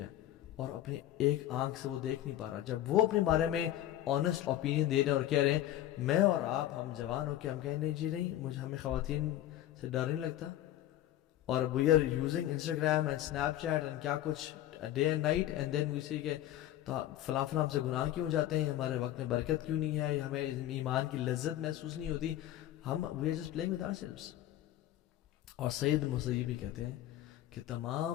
ہے اور اپنی ایک آنکھ سے وہ دیکھ نہیں پا رہا، جب وہ اپنے بارے میں آنیسٹ اوپینین دے رہے ہیں اور کہہ رہے ہیں میں اور آپ ہم جوان ہو کے ہم کہیں نہیں جی نہیں ہمیں خواتین سے ڈر نہیں لگتا، اور we are using Instagram and Snapchat and کیا کچھ day and night, and then we see کہ تو فلاں ہم سے گناہ کیوں جاتے ہیں، ہمارے وقت میں برکت کیوں نہیں ہے، ہمیں ایمان کی لذت محسوس نہیں ہوتی، ہم we are just playing with ourselves. اور سعید بن مسیب بھی کہتے ہیں کہ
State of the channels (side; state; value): right; quieter; 13.1 dB